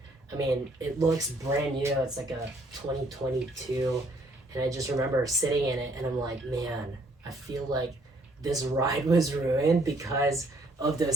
I mean, it looks brand new. It's like a 2022, and I just remember sitting in it, and I'm like, man, I feel like this ride was ruined because of those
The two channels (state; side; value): normal; both; correlation 0.64